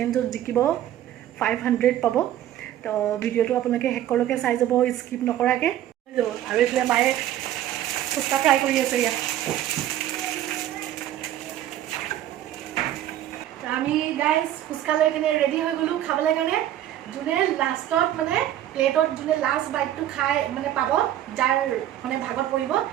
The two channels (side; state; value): left; quieter; 12.3 dB